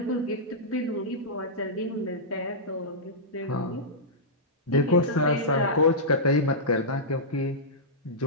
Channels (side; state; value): both; normal; correlation -0.14